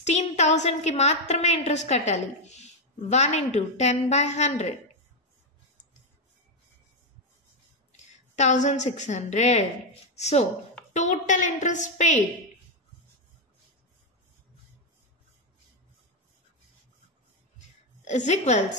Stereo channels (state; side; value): normal; both; correlation 0.04